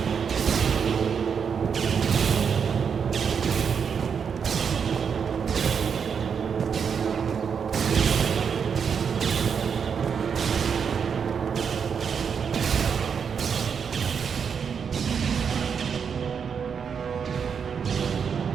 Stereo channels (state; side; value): quieter; left; 6.7 dB